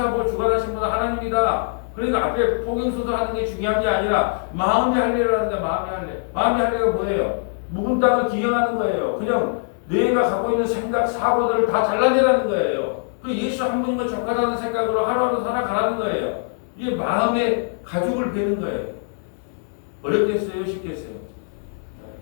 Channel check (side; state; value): right; silent; 59 dB below the other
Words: 주관하신 분은 하나님이다. 그러니까 앞에 포경수도 하는 게 중요한 게 아니라 마음의 할례를 하는 거야. 마음의 할례. 마음의 할례가 뭐예요? 묵은 땅을 기경하는 거예요. 그냥 내가 갖고 있는 생각, 사고들을 다 잘라내라는 거예요. 그 예수 한 분이면 족하다는 생각으로 하루하루 살아가라는 거예요. 이게 마음의 가죽을 베는 거예요. 어렵겠어요? 쉽겠어요?